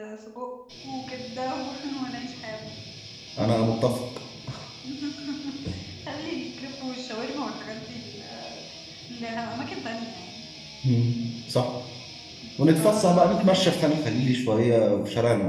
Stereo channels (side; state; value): both; identical; correlation 1.00